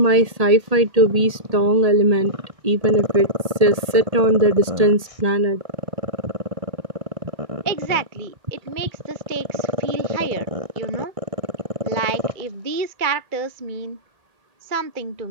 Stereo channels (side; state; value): left; late; 1.8 ms